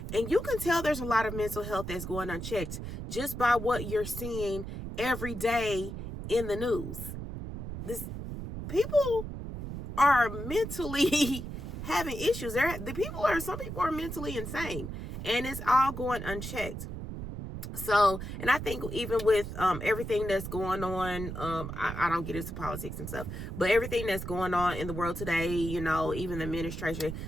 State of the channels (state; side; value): noise; right; rumble, 7 dB below the sound